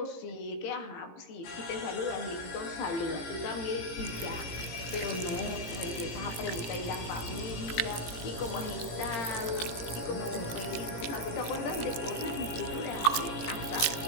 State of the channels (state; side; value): late; right; 17 ms